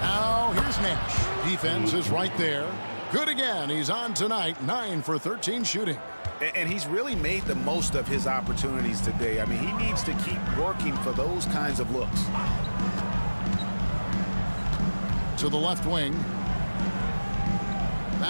Now here's Nash. Defense is right there. Good again. He's on tonight, 9 for 13 shooting. And he's really made the most of his opportunities today. I mean, he needs to keep working for those kinds of looks. To the left wing.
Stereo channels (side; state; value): both; inverted; correlation -1.00